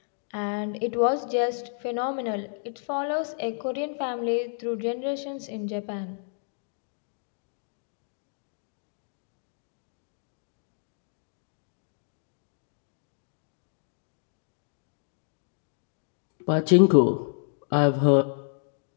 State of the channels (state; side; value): silent; right; digital silence